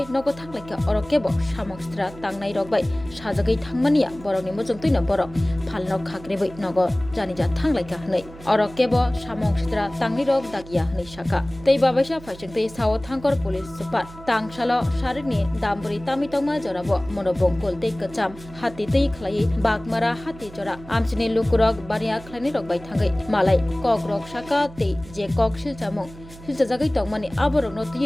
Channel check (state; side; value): noise; right; hum, 18 dB below the sound